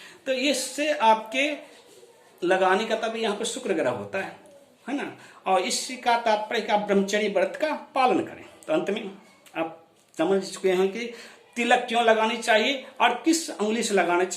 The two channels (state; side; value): identical; both; correlation 1.00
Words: तो इससे आपके लगाने का तभी यहाँ पर शुक्र ग्रह होता है ना। और इसका तात्पर्य का ब्रह्मचर्य व्रत का पालन करें। तो अंत में आप समझ चुके हैं कि तिलक क्यों लगानी चाहिए और किस उंगली से लगाना